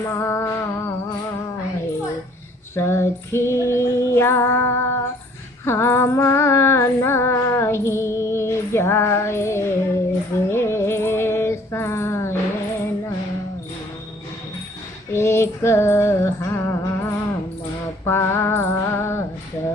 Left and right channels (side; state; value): both; normal; correlation 0.57